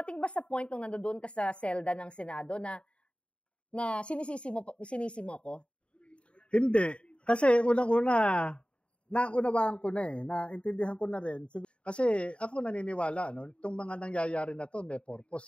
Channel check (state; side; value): late; right; 0.058 ms